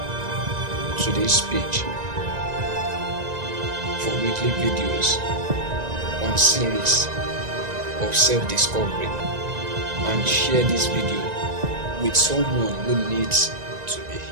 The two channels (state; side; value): late; left; 1.9 ms